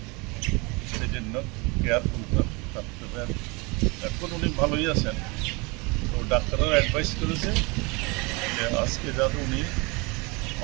সেই জন্য কেয়ারফুল থাকতে হবে। এখন উনি ভালোই আছেন, তো ডাক্তাররা অ্যাডভাইস করেছে যে আজকে যাতে উনি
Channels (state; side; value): quieter; left; 27.5 dB